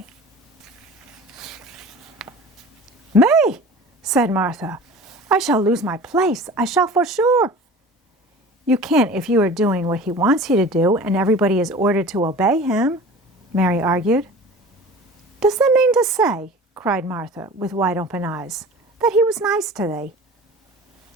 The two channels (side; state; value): both; normal; correlation 0.39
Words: Me, said Martha. I shall lose my place. I shall for sure. You can't if you are doing what he wants you to do and everybody is ordered to obey him, Mary argued. Does that mean to say, cried Martha with wide-open eyes, that he was nice to thee?